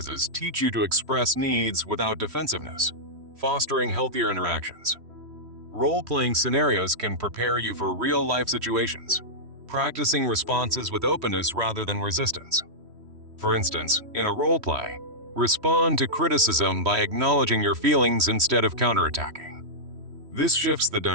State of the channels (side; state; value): left; late; 3.1 ms